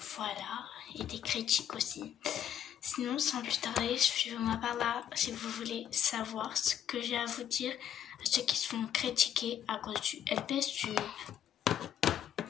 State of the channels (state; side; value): quieter; right; 9.8 dB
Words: voilà, et des critiques aussi. Sinon, sans plus tarder, suivez-moi par là si vous voulez savoir ce que j'ai à vous dire à ceux qui se font critiquer à cause du LPS Tube.